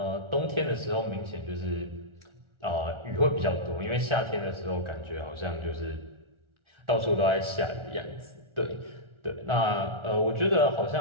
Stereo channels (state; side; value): late; left; 1.4 ms